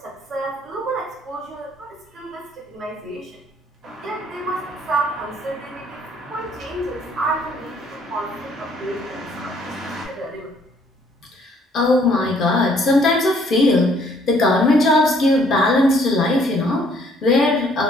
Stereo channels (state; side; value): normal; both; correlation 0.63